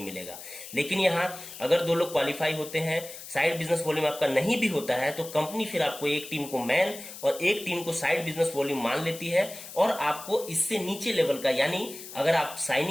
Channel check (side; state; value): left; noise; hiss, 13 dB below the sound